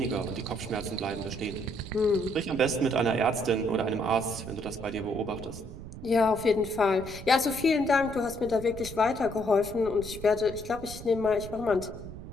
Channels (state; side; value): noise; right; rumble, 12 dB below the sound